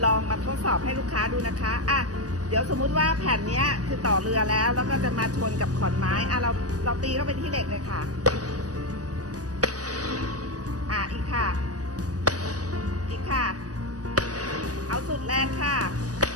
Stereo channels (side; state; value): left; late; 0.68 ms